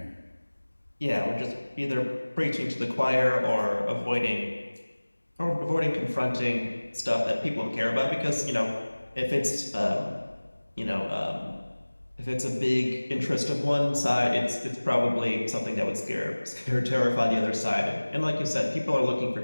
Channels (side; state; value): both; inverted; correlation -1.00